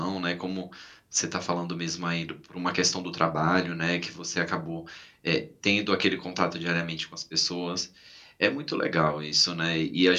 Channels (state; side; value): identical; both; correlation 1.00